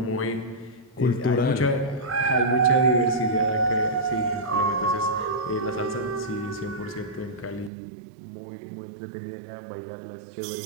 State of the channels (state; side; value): drops out; left; at 7.7 s